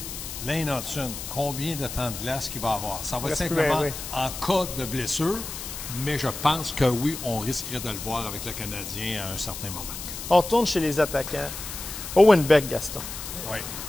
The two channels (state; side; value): noise; left; hiss, 8 dB below the sound